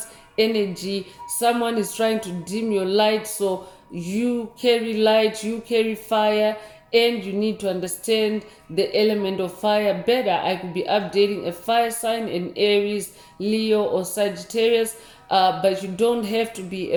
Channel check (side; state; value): both; identical; correlation 1.00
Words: energy, someone is trying to dim your light, so you carry light, you carry fire, and you need to understand the element of fire better. I could be updating a fire sign in Aries, Leo, or Sagittarius, but you don't have to be